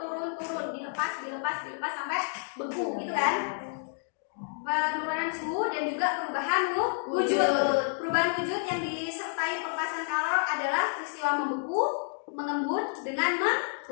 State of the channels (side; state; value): right; silent; 58 dB below the other